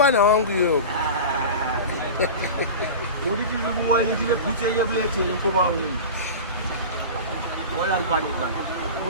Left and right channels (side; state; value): both; inverted; correlation -0.30